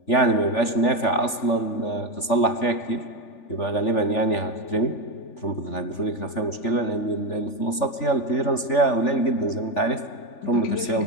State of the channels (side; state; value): right; late; 3.4 ms